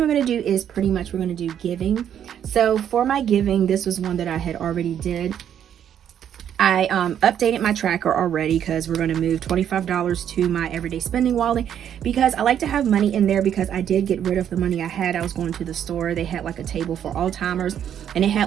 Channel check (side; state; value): left; quieter; 9.5 dB